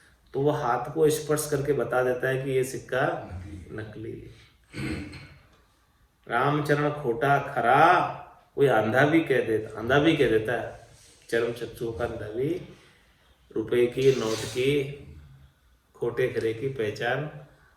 तो वो हाथ को स्पर्श करके बता देता है कि ये सिक्का नकली है। रामचरण खोटा खरा, कोई अंधा भी कह देता है। चरम चक्षुओं का अंधा भी रुपए की, नोट की, खोटे खरे की पहचान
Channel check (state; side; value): identical; both; correlation 1.00